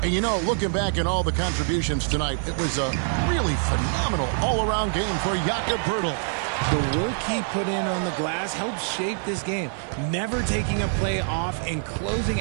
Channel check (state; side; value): silent; left; 62 dB below the other